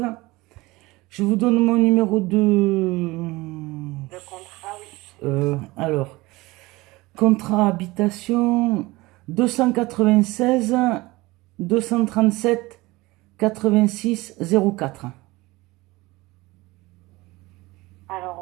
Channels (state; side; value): quieter; left; 21.0 dB